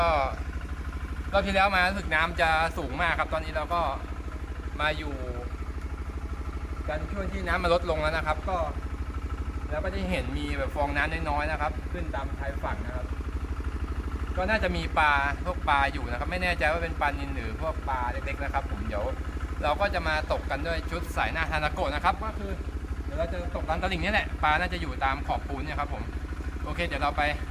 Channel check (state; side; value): identical; both; correlation 1.00